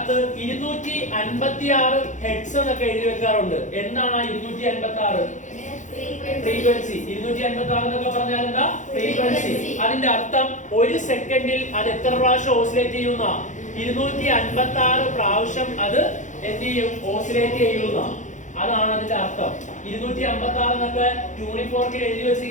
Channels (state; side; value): late; right; 0.36 ms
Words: 256 ഹെഡ്സ് എന്നൊക്കെ എഴുതി വെക്കാറുണ്ട്. എന്താണ് ആ 256? ഫ്രീക്വൻസി. 256 എന്നൊക്കെ പറഞ്ഞാൽ എന്താ? ഫ്രീക്വൻസി. അതിന്റെ അർത്ഥം ഒരു സെക്കൻഡിൽ അത് എത്ര പ്രാവശ്യം ഓസിലേറ്റ് ചെയ്യുന്ന? 256 പ്രാവശ്യം അത് എന്ത് ചെയ്യും? ഓസിലേറ്റ് ചെയ്യുന്ന. അതാണ് അതിന്റെ അർത്ഥം. 256 എന്നൊക്കെ ട്യൂണിംഗ് ഫോർക്കിൽ എഴുതി